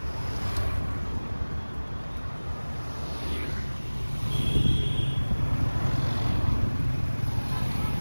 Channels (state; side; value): inverted; both; correlation -1.00